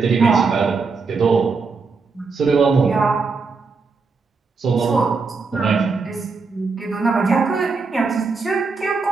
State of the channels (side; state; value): left; quieter; 4.5 dB